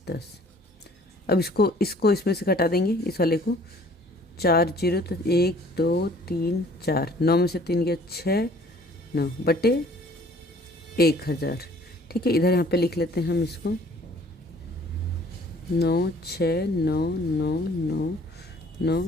अब इसको इसमें से घटा देंगे, इस वाले को 4 0 तो 1 2 3 4 9 में से 3 गया 6 9 बटे 1000। ठीक है, इधर यहाँ पे लिख लेते हैं हम इसको 9 6 9 9 9 9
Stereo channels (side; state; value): both; normal; correlation 0.54